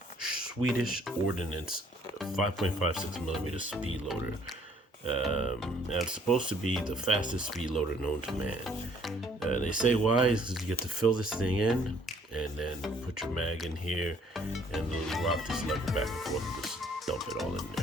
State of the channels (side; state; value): both; normal; correlation 0.61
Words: Swedish Ordnance 5.56mm speed loader. And it's supposed to be the fastest speed loader known to man. They say why is because you get to fill this thing in and then put your mag in here and literally rock this lever back and forth and just dump it all in